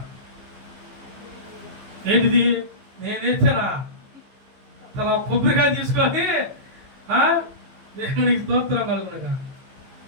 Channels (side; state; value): left; late; 15 ms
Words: ఏంటిది? నేనేసానా? తన కొబ్బరికాయ తీసుకొని దేవునికి స్తోత్రం కలుగునుగా